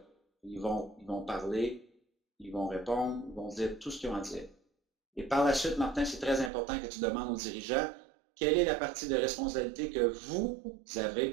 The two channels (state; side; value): drops out; left; at 6.5 s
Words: Ils vont parler, ils vont répondre, ils vont dire tout ce qu'ils ont à dire. Et par la suite, Martin, c'est très important que tu demandes aux dirigeants quelle est la partie de responsabilité que vous